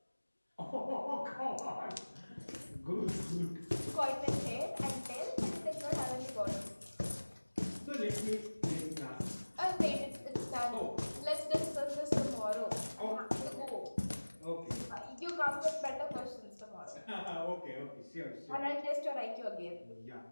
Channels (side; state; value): both; inverted; correlation -1.00